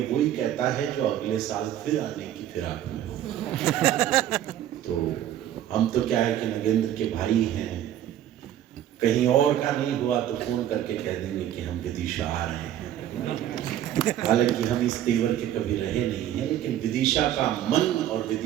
वही कहता है जो अगले साल फिर आने की फिराक में हो। तो हम तो क्या है कि नगेंद्र के भाई हैं, कहीं और का नहीं हुआ तो फोन करके कह देंगे कि हम विदिशा आ रहे हैं। हालांकि हम इस तेवर के कभी रहे नहीं हैं, लेकिन विदिशा का मन और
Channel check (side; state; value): left; quieter; 11.5 dB